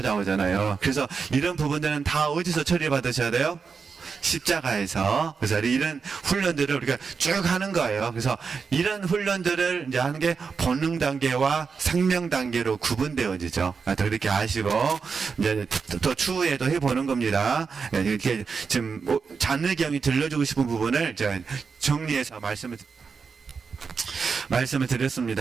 그래서 이런 부분들은 다 어디서 처리받으셔야 돼요? 십자가에서. 그래서 이런 훈련들을 우리가 쭉 하는 거예요. 그래서 이런 훈련들을 이제 하는 게 본능 단계와 생명 단계로 구분되어지죠. 더 그렇게 아시고 이제 또 추후에도 해보는 겁니다. 이렇게 지금 잔느경이 들려주고 싶은 부분을 제가 정리해서 말씀을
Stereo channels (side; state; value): left; quieter; 5.4 dB